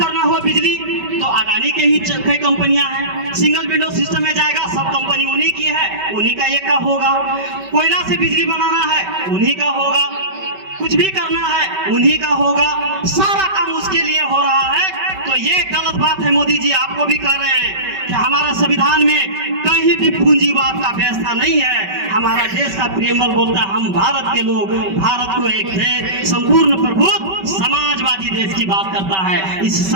हो बिजली, तो अदानी के ही कई कंपनियां हैं। सिंगल विंडो सिस्टम में जाएगा, सब कंपनी उन्हीं की है, उन्हीं का एक का होगा। कोयला से बिजली बनाना है, उन्हीं का होगा। कुछ भी करना है, उन्हीं का होगा। सारा काम उसके लिए हो रहा है। तो ये गलत बात है। मोदी जी आपको भी कह रहे हैं कि हमारा संविधान में कहीं भी पूंजीवाद का व्यवस्था नहीं है। हमारा देश का प्रेमल बोलता है हम भारत के लोग, भारत को एक देश, संपूर्ण प्रभुत्व समाजवादी देश की बात करता है। इस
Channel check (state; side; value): late; left; 5.2 ms